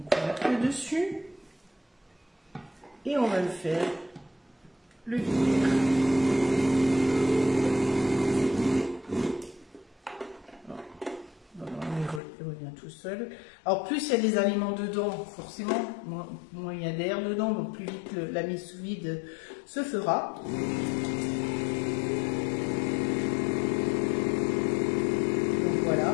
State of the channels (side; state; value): right; drops out; at 12.2 s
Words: dessus. Et on va le faire le vinaigre. On va seul. Alors plus il y a des aliments dedans, forcément, moins il y a d'air dedans, donc plus vite la mise sous vide se fera. Donc voilà,